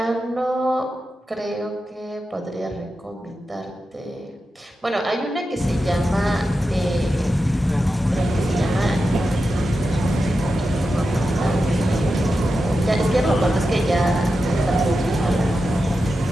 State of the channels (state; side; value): normal; both; correlation 0.90